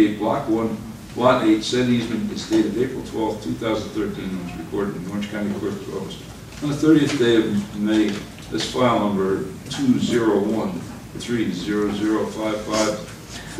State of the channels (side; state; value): both; identical; correlation 1.00